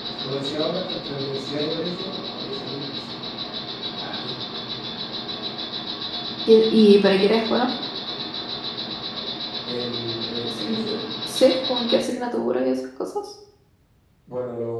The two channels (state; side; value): identical; both; correlation 1.00